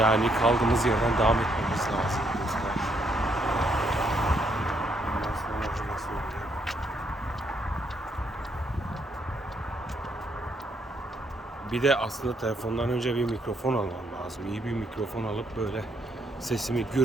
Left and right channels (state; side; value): normal; both; correlation 0.73